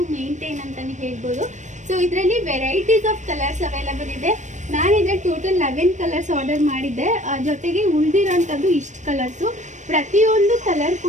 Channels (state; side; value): late; left; 0.35 ms